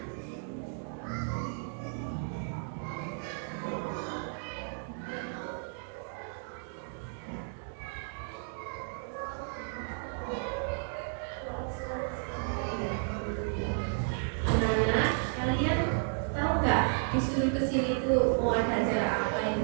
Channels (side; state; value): left; silent; 56 dB below the other